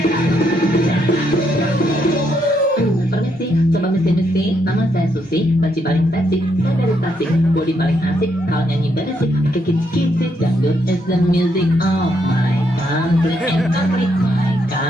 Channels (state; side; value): normal; both; correlation 0.76